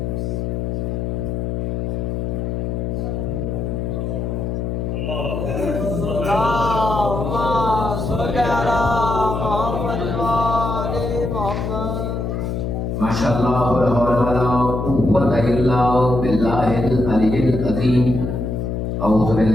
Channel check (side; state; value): left; noise; hum, 2 dB below the sound